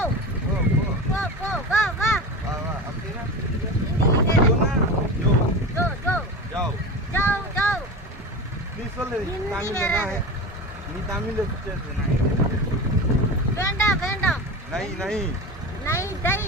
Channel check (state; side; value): normal; both; correlation 0.27